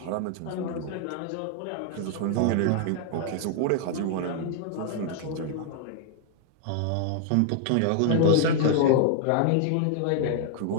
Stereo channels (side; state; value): both; different; correlation 0.00